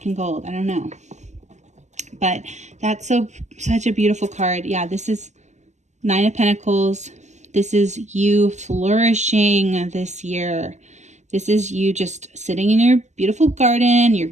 and gold. I don't know, but that's such a beautiful card. Yeah, this is Nine of Pentacles. This is you flourishing this year. This is you just sitting in your beautiful garden, your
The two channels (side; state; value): left; late; 0.34 ms